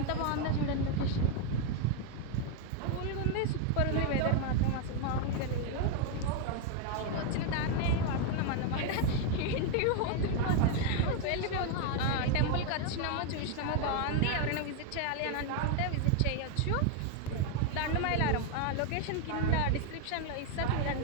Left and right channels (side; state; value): both; different; correlation 0.01